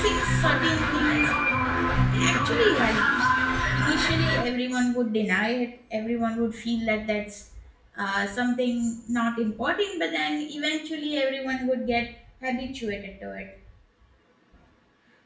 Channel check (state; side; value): identical; both; correlation 1.00